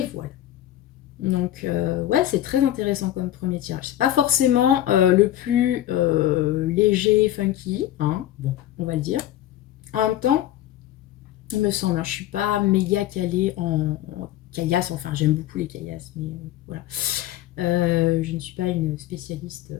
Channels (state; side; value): quieter; right; 13.1 dB